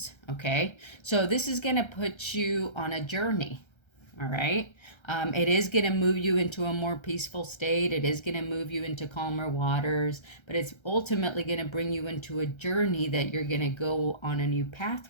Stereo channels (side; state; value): right; late; 1.3 ms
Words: Okay. So this is going to put you on a journey. All right. It is going to move you into a more peaceful state. It is going to move you into calmer waters, but it's ultimately going to bring you into a journey that you're going to go on a new